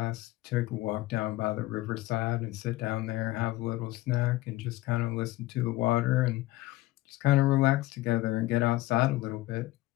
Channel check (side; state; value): right; quieter; 17.9 dB